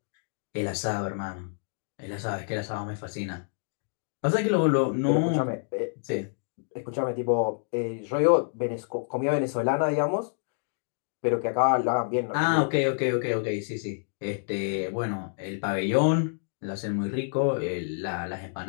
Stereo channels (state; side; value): silent; right; digital silence